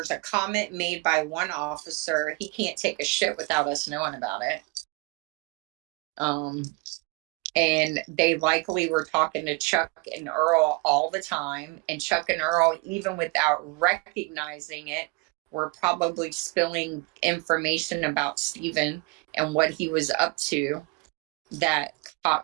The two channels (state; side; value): quieter; left; 27.0 dB